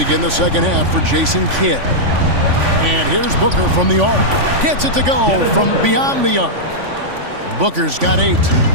the second half for Jason Kidd. And here's Booker from the arc. Gets it to go from beyond the arc. Booker's got 8.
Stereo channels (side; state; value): left; late; 3.5 ms